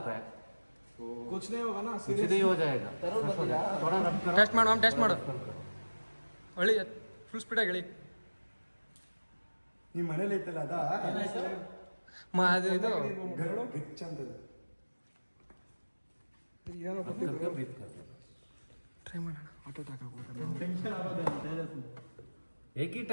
है. तो कुछ नहीं होगा ना? कुछ नहीं हो जाएगा. थोड़ा रब करो. टेस्ट माಡು, टेस्ट माಡು. ಒಳ್ಳೆ ಫುಲ್ ಸ್ಪೀಡಾಗಿ ಹೇಳಿ. ನಿಮ್ಮ ಮನೇಲಿ ಐತಲ್ಲ ಅದ ಅದು ಇದು ಗಿಚ್ ಅಂತ ಏನೋ ಬ್ರೀತ್ कर. ಟ್ರೈ ಮಾಡೋಣ. ಆಟೋ ಅಟ್ಯಾಕ್ एक ही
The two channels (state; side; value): inverted; both; correlation -1.00